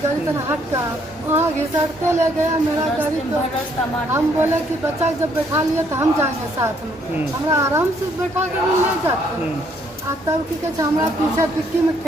गाड़ी तरह हट का वहाँ घिसटते ले गया मेरा गाड़ी को। हम बोले कि बच्चा जब बैठा लिया तो हम जाएंगे साथ में, हमारा आराम से बैठा कर ले जाते। तब की कहते हमारा पीछे टिक्की में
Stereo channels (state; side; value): normal; both; correlation 0.67